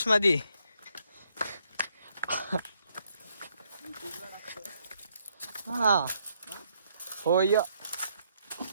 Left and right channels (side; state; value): both; inverted; correlation -0.73